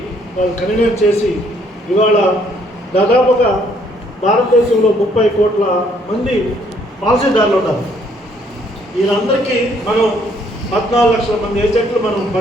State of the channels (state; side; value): normal; both; correlation 0.66